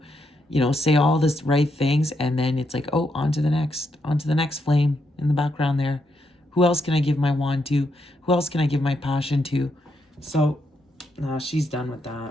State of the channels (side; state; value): both; normal; correlation 0.79